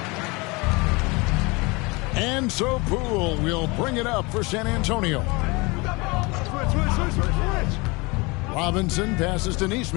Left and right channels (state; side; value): quieter; right; 26.0 dB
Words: And so Poole will bring it up for San Antonio. Robinson passes to